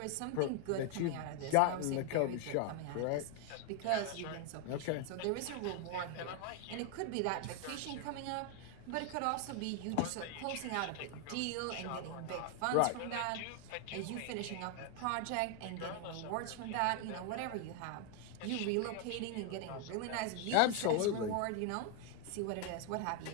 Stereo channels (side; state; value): both; different; correlation 0.00